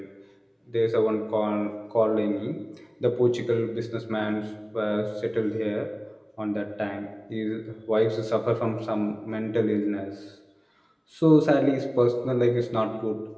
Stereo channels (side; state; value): both; identical; correlation 1.00